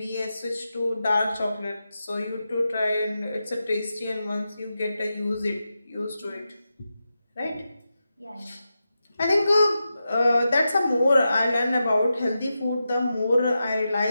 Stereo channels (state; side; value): inverted; both; correlation -0.90